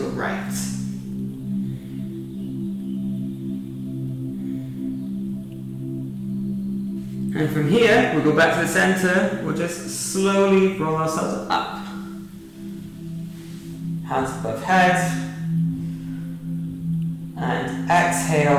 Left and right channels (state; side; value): identical; both; correlation 1.00